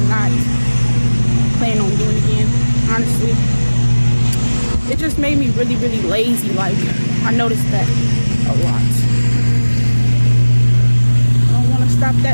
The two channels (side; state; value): both; inverted; correlation -1.00